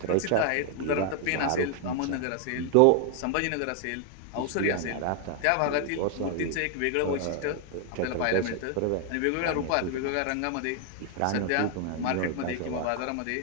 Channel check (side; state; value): both; different; correlation 0.00